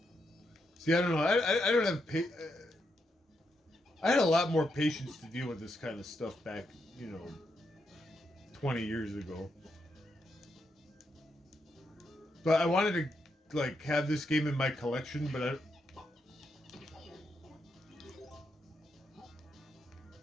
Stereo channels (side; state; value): both; normal; correlation 0.82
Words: See, I don't know. I don't have I had a lot more patience to deal with this kind of stuff back, 20 years ago. But I wanted to, have this game in my collection, but